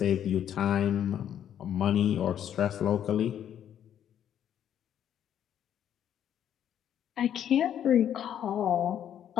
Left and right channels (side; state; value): right; quieter; 10.0 dB